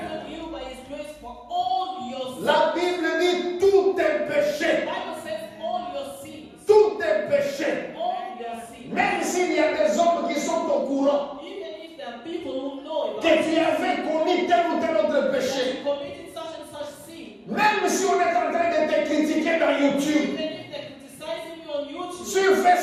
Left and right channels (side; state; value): both; identical; correlation 1.00